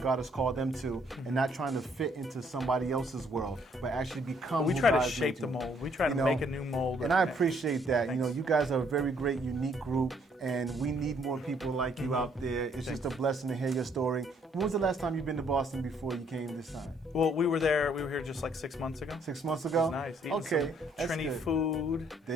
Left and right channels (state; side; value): normal; both; correlation 0.67